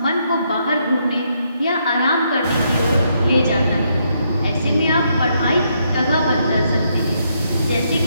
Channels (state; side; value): inverted; both; correlation -0.76